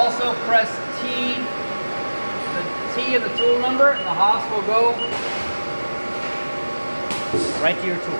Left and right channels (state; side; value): inverted; both; correlation -1.00